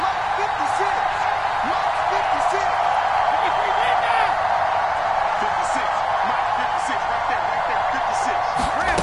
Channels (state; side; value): identical; both; correlation 1.00